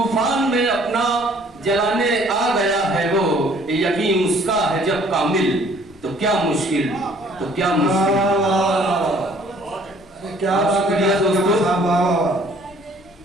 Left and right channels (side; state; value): both; normal; correlation 0.58